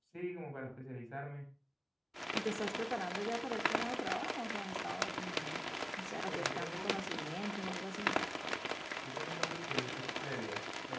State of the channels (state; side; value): identical; both; correlation 1.00